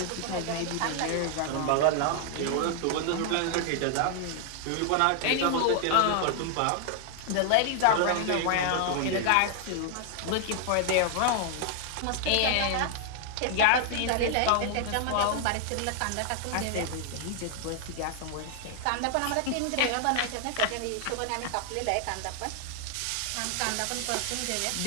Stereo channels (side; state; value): both; different; correlation 0.00